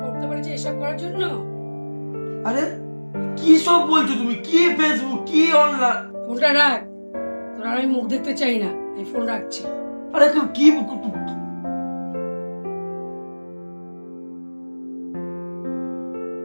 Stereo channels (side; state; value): both; inverted; correlation -1.00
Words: পড়তে পারছি এসব করার জন্য। আরে কি সব বলছো তুমি? কি ফেসবুক, কি অনলাইন? ফোনটা রাখ, তোর আর আমি মুখ দেখতে চাই না, আমি ফোন রাখছি। আরে কি